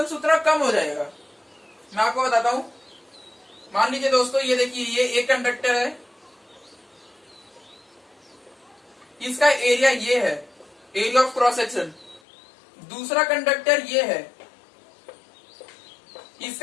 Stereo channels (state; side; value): drops out; right; at 12.2 s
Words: उतना कम हो जाएगा। मैं आपको बताता हूं। मान लीजिए दोस्तों, ये देखिए, ये एक कंडक्टर है, इसका एरिया ये है, एरिया ऑफ क्रॉस सेक्शन। दूसरा कंडक्टर ये है,